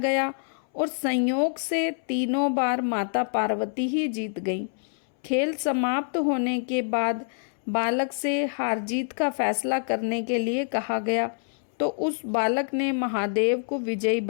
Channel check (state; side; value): silent; right; 61 dB below the other